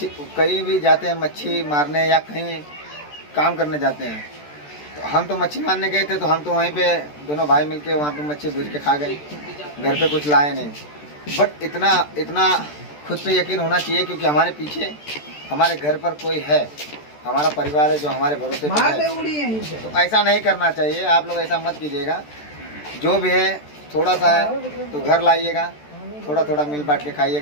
कहीं भी जाते हैं मच्छी मारने या कहीं काम करने जाते हैं तो हम तो मच्छी मारने गए थे तो हम तो वहीं पे दोनों भाई मिलके वहाँ पे मच्छी भूज के खा गए, घर पे कुछ लाए नहीं। बट इतना खुद पे यकीन होना चाहिए क्योंकि हमारे पीछे हमारे घर पर कोई है, हमारा परिवार है जो हमारे भरोसे पे है। तो ऐसा नहीं करना चाहिए, आप लोग ऐसा मत कीजिएगा। जो भी है थोड़ा सा है तो घर लाइएगा, थोड़ा थोड़ा मिल बांट के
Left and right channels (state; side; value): late; right; 14 ms